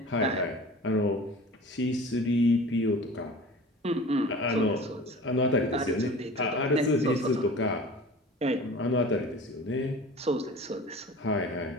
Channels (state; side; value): normal; both; correlation 0.40